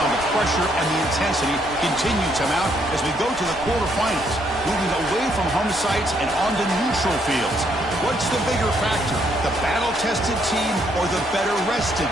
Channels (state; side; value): normal; both; correlation 0.71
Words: the pressure and the intensity continue to mount as we go to the quarterfinals, moving away from home sites and onto neutral fields. What's the bigger factor, the battle-tested team or the better-rested